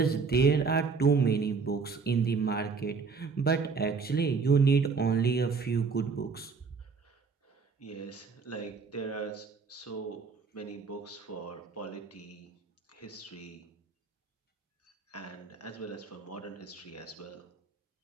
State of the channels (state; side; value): quieter; left; 5.0 dB